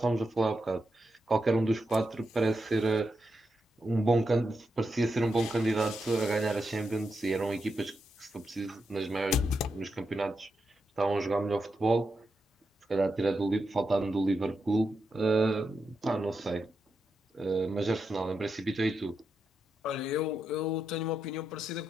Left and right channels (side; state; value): both; normal; correlation 0.86